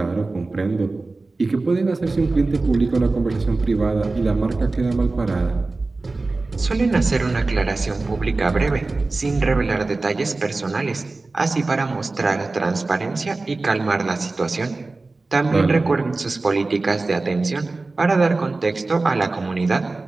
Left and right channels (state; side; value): quieter; left; 3.4 dB